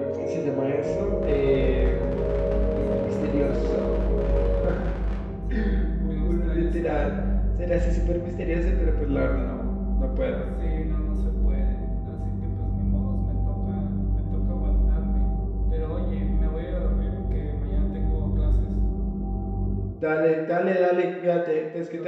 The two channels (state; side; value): identical; both; correlation 1.00